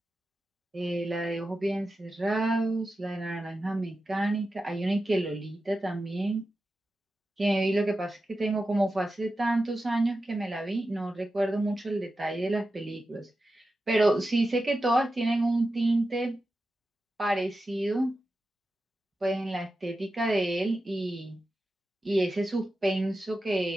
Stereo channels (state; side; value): normal; both; correlation 0.92